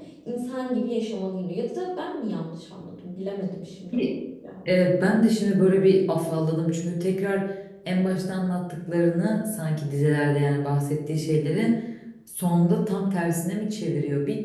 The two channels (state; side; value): identical; both; correlation 1.00